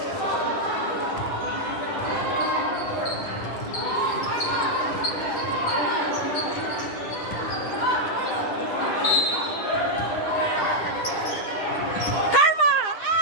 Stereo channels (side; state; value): right; late; 10 ms